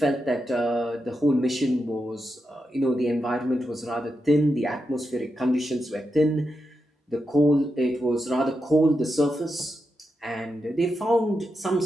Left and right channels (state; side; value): normal; both; correlation 0.87